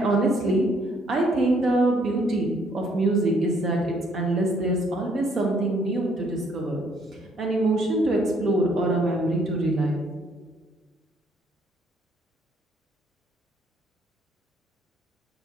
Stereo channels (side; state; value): both; normal; correlation 0.66